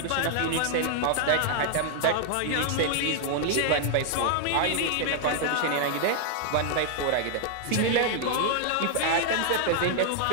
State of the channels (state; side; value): different; both; correlation -0.01